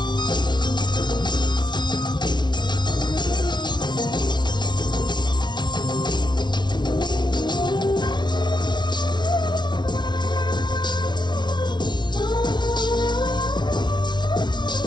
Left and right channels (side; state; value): right; late; 0.21 ms